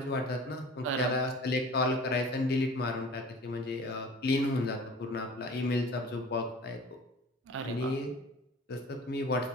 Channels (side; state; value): both; normal; correlation 0.43